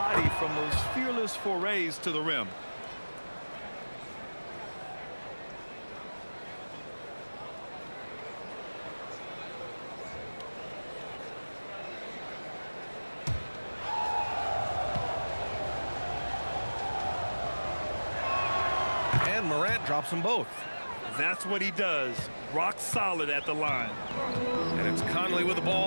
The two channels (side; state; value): both; inverted; correlation -1.00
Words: from those fearless forays to the rim. And Morant drops them both. That's what he does. Rock solid at the line. And it's Conley with the